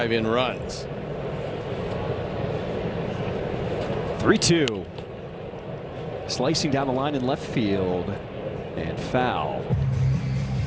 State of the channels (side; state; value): both; identical; correlation 1.00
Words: in runs. 3-2. Slicing down the line in left field, and foul.